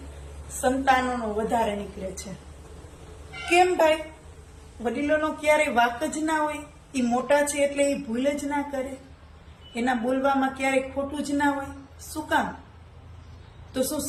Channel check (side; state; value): both; identical; correlation 1.00